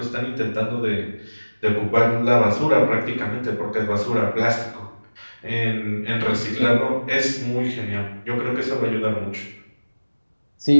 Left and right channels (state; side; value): inverted; both; correlation -1.00